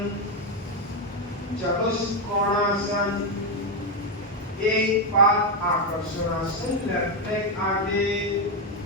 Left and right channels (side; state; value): both; normal; correlation 0.06